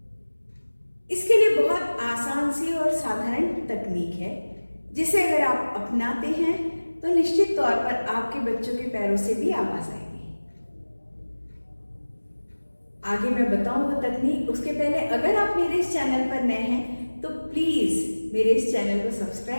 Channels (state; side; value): inverted; both; correlation -1.00